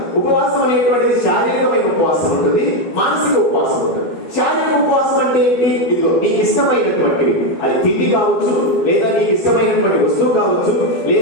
ఉపవాసం అనేటువంటిది శారీరకమైన ఉపవాసం ఉంటుంది, మానసిక ఉపవాసం ఉంటుంది. శారీరక ఉపవాసం అంటే ఏంటి? ఇదిగో నీకు ఇష్టమైనటువంటివి, అది తిండి కావచ్చు, లేదా నీకు ఇష్టమైనటువంటి వస్తువు కావచ్చు,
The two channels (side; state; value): right; late; 12 ms